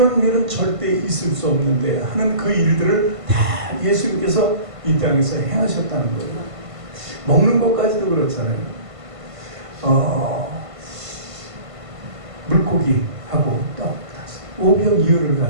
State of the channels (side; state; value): left; late; 1.5 ms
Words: 일은 절대 있을 수 없는데 하는 그 일들을 다 예수님께서 이 땅에서 행하셨다는 거예요. 먹는 것까지도 그렇잖아요. 물고기하고 떡 500이어를